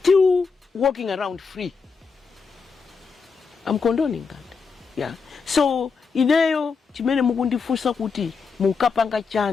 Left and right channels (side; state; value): right; quieter; 5.2 dB